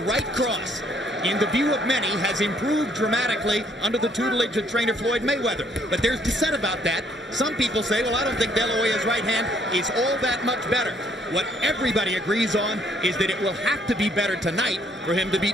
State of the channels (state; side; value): normal; both; correlation 0.66